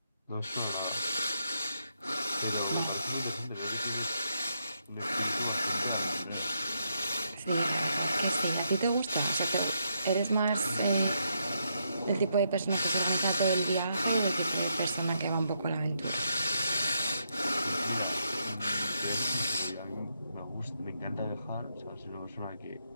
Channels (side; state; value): both; inverted; correlation -0.79